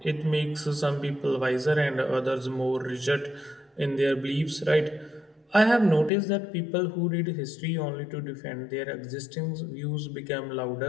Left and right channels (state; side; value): drops out; right; at 6.1 s